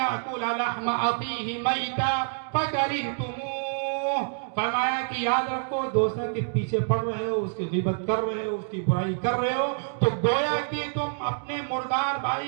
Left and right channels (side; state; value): left; silent; digital silence